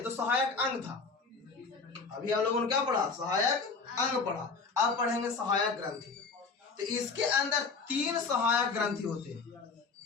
तो सहायक अंग था, अभी हम लोगों ने क्या पढ़ा? सहायक अंग पढ़ा। अब पढ़ेंगे सहायक ग्रंथि। तो इसके अंदर 3 सहायक ग्रंथि होते हैं।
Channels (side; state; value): right; quieter; 4.6 dB